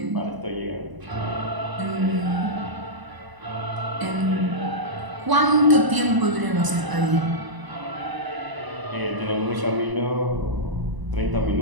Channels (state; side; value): late; left; 1.0 ms